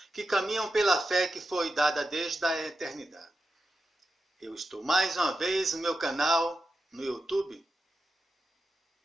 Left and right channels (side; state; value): both; normal; correlation 0.90